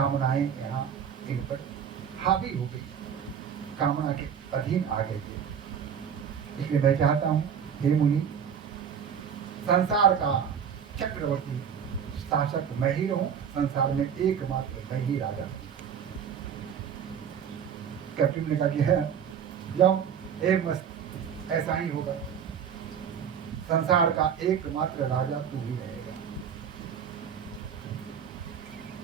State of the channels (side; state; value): left; quieter; 7.8 dB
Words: यहाँ इन पर हावी हो गई, कामना के अधीन आ गए थे। इसलिए मैं चाहता हूँ हे मुनि, संसार का चक्रवर्ती शासक मैं ही रहूं, संसार में एकमात्र मैं ही राजा। कैप्टन ने कहा कि है जाओ, एक मस्त ऐसा ही होगा, संसार का एकमात्र राजा तू ही रहेगा।